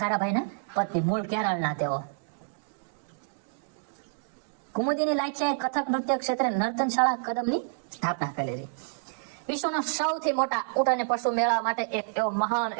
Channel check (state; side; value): silent; left; digital silence